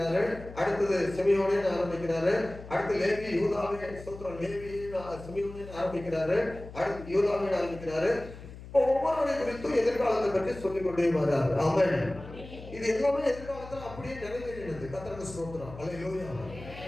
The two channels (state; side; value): noise; left; hum, 15 dB below the sound